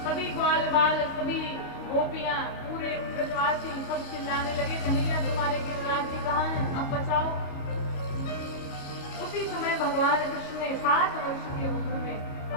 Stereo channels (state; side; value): late; right; 29 ms